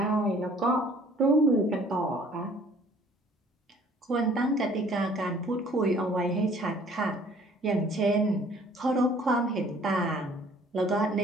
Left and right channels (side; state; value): both; normal; correlation 0.55